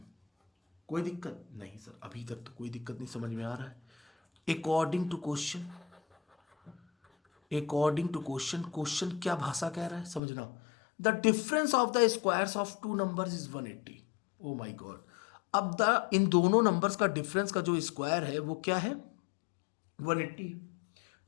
कोई दिक्कत नहीं सर, अभी तक तो कोई दिक्कत नहीं समझ में आ रहा है। According to question, according to question, question क्या भाषा कह रहा है समझना। The difference of the squares of two numbers is 180। Oh my god, अब द इन दोनों नंबर्स का डिफरेंस का जो स्क्वायर है वो क्या है 180।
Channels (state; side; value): drops out; right; at 10.2 s